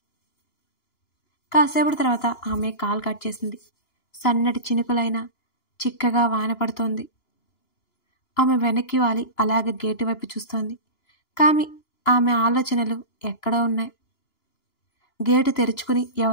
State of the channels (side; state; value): right; late; 2.9 ms